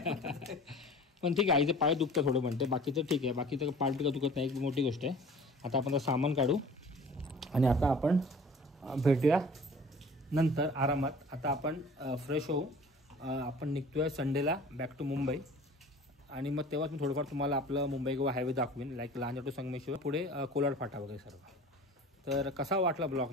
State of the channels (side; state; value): both; normal; correlation 0.45